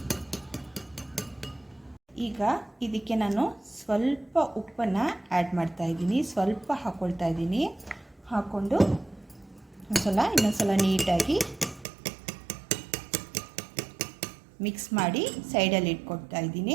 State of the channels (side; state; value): left; drops out; at 11.9 s